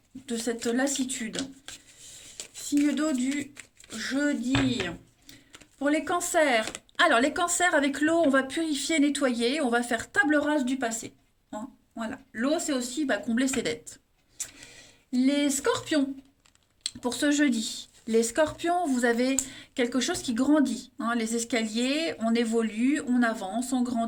de cette lassitude. Signe d'eau du jeudi. Pour les cancers. Alors, les cancers, avec l'eau, on va purifier, nettoyer. On va faire table rase du passé. Hein, voilà. L'eau, c'est aussi combler ses dettes. Les scorpions, pour ce jeudi. Les scorpions, vous avez quelque chose qui grandit. Hein, les escaliers, on évolue, on avance, on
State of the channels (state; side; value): identical; both; correlation 1.00